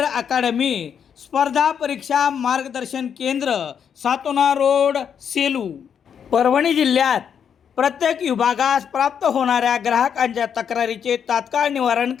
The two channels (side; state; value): right; quieter; 7.8 dB